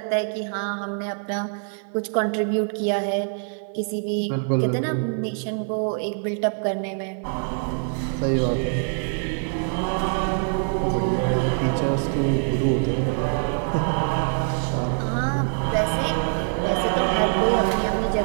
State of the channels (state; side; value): silent; left; 56 dB below the other